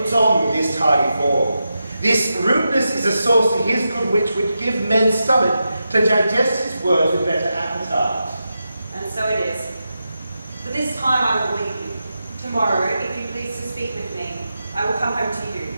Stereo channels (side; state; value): both; inverted; correlation -0.89